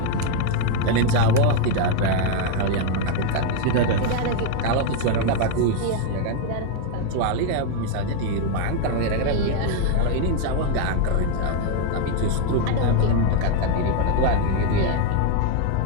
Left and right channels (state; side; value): different; both; correlation 0.01